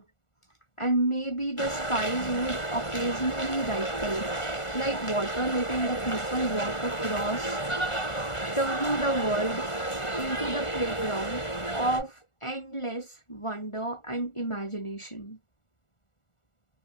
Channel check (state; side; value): late; right; 1.4 ms